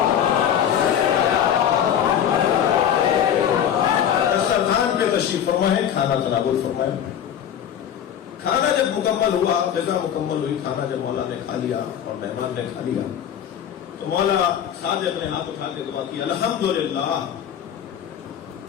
دسترخوان پہ تشریف فرمائے، کھانا تناول فرمائے. کھانا جب مکمل ہوا، غذا مکمل ہوئی، کھانا جب مولا نے کھا لیا اور مہمان نے کھا لیا تو مولا صادق نے ہاتھ اٹھا کے دعا کی، الحمدللہ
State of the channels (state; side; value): quieter; right; 9.3 dB